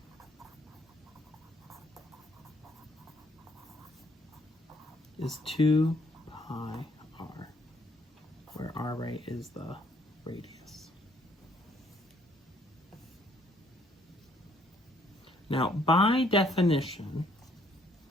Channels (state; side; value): normal; both; correlation 0.65